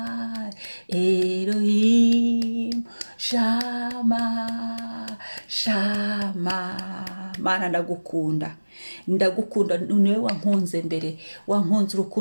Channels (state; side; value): inverted; both; correlation -1.00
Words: Elohim Shama Shama. Mana ndagukunda, ndagukunda, niwe wankunze mbere, wankunze